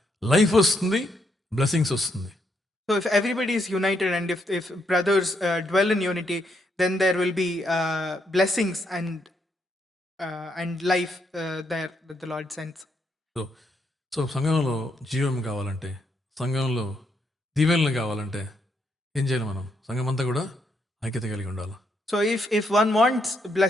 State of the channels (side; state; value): both; normal; correlation 0.77